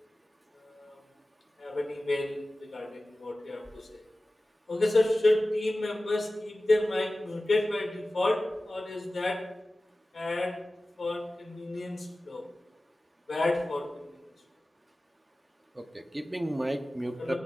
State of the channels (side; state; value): both; normal; correlation 0.96